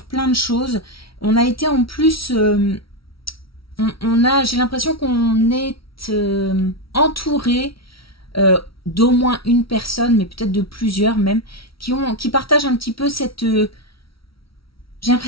plein de choses. On a été en plus... j'ai l'impression qu'on est entouré d'au moins une personne, mais peut-être de plusieurs même, qui partagent un petit peu cette... j'ai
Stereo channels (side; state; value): right; late; 0.75 ms